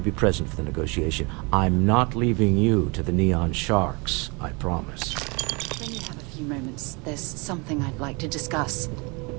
be present for the negotiation. I'm not leaving you to the Neon Sharks, I promise. When you have a few moments, there's something I'd like to discuss.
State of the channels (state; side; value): quieter; left; 29.5 dB